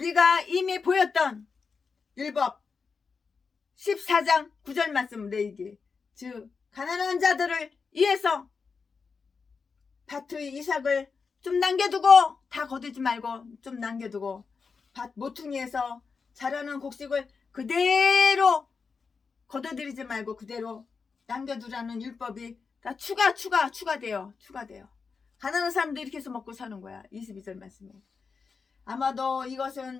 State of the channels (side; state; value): right; quieter; 5.1 dB